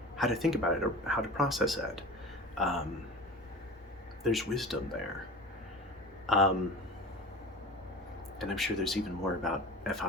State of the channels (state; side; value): normal; both; correlation 0.35